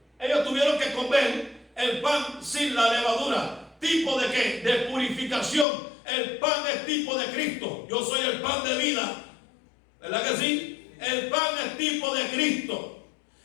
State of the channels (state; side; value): drops out; right; at 5.7 s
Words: ellos tuvieron que comer el pan sin la levadura. ¿Tipo de qué? De purificación. El pan es tipo de Cristo. Yo soy el pan de vida. ¿Verdad que sí? El pan es tipo de Cristo.